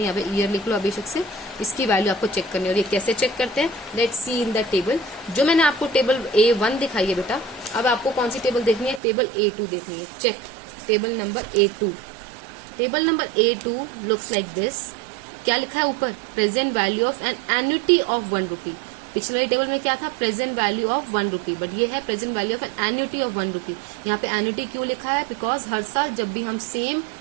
यहाँ पे ईयर लिख लो अभिषेक से, इसकी वैल्यू आपको चेक करनी है। और ये कैसे चेक करते हैं, let's see in the table. जो मैंने आपको टेबल A1 दिखाई है बेटा, अब आपको कौन सी टेबल देखनी है, टेबल A2 देखनी है। Check table number A2। Table number A2 looks like this. क्या लिखा है ऊपर, present value of an annuity of 1 rupee। पिछले वाली टेबल में क्या था, present value of 1 rupee, but ये है present value of an annuity of 1 rupee। यहाँ पे एन्युटी क्यों लिखा है, बिकॉज हर साल जब भी हम सेम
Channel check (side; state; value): left; drops out; at 9.0 s